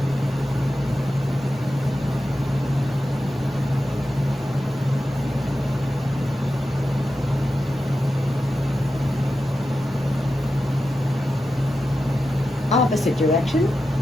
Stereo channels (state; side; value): normal; both; correlation 0.91